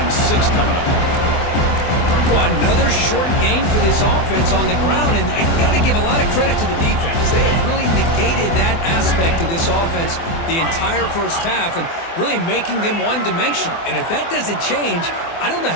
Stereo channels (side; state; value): right; late; 24 ms